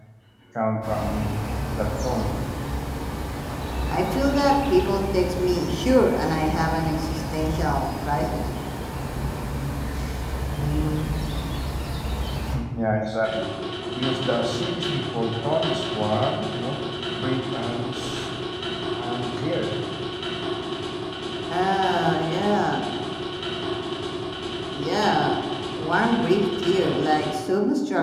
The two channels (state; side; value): identical; both; correlation 1.00